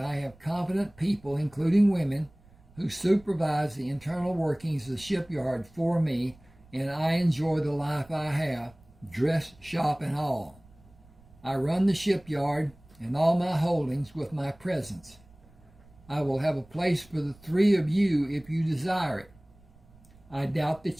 have competent people, including women, who supervise the internal workings of the shipyard for me, and I enjoy the life I have, dress shop and all. I run the shipyard and all my holdings with my presence. I will have a place for the 3 of you if you desire it. I doubt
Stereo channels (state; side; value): noise; right; rumble, 27 dB below the sound